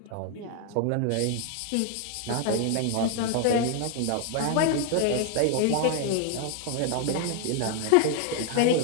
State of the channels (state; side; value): different; both; correlation 0.00